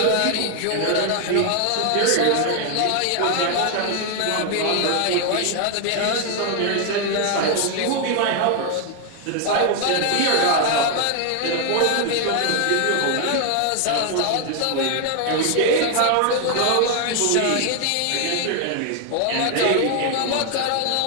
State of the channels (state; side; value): different; both; correlation 0.00